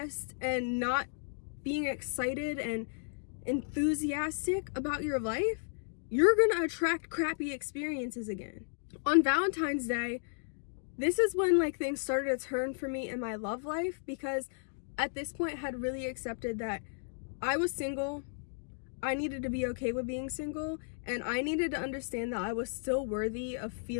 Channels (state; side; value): silent; right; digital silence